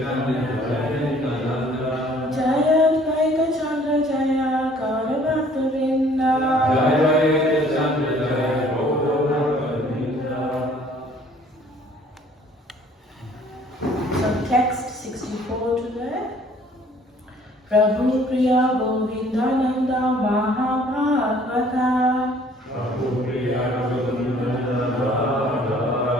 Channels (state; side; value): normal; both; correlation 0.57